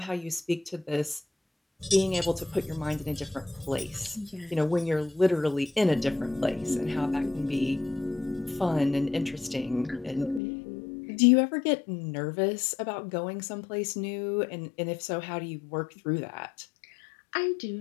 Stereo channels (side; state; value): right; drops out; at 10.4 s